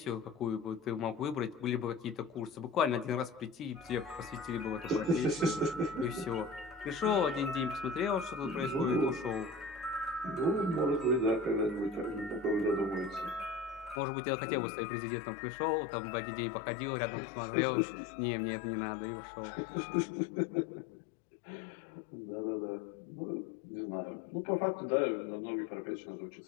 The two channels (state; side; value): drops out; right; at 14.0 s